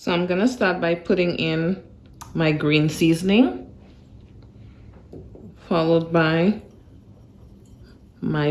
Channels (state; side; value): identical; both; correlation 1.00